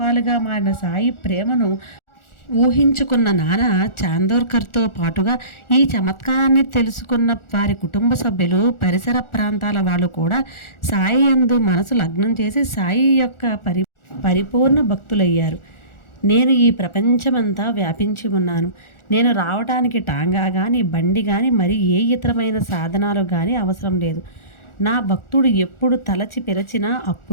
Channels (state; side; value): late; right; 1.4 ms